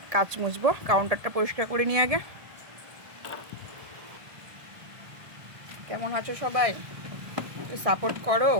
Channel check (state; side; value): late; left; 1.6 ms